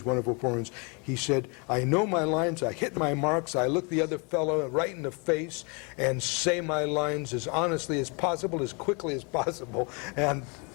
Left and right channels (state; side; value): quieter; right; 32.9 dB